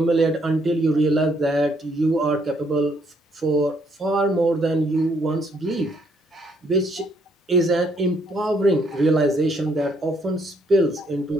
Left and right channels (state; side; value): normal; both; correlation 0.70